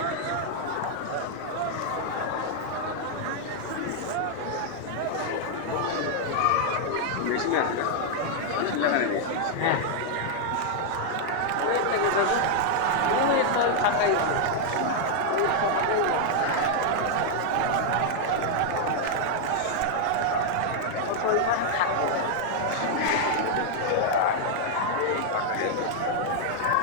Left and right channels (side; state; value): both; different; correlation 0.00